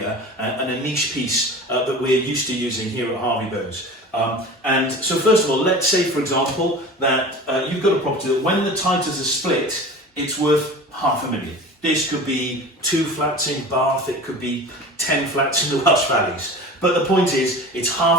and a niche piece that we're used to using here at Harvey Bows. And so first of all, let's say, for example, that you've got a property that when the titles are split, it's worth £500,000. This could be 2 flats in Bath, it could be 10 flats in the Welsh Valleys. But the point is, it's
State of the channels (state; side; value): normal; both; correlation 0.36